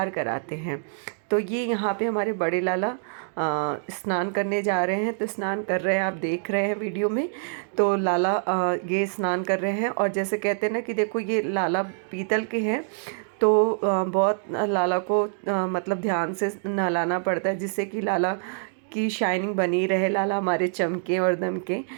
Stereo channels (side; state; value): left; silent; digital silence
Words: कराते हैं। तो ये यहाँ पे हमारे बड़े लाला स्नान करने जा रहे हैं। तो स्नान कर रहे हैं, आप देख रहे हैं वीडियो में। तो लाला ये स्नान कर रहे हैं और जैसे कहते हैं ना कि देखो ये लाला पीतल के हैं, तो बहुत लाला को मतलब ध्यान से नहलाना पड़ता है, जिससे कि लाला की शाइनिंग बनी रहे, लाला हमारे चमके और दमके।